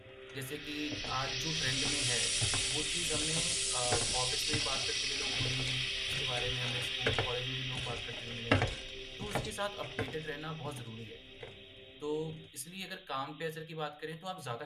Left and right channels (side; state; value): both; identical; correlation 1.00